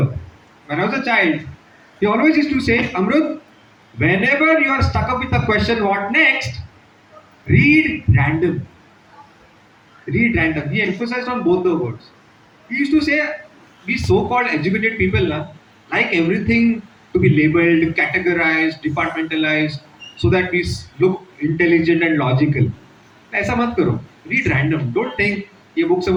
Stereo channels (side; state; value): both; identical; correlation 1.00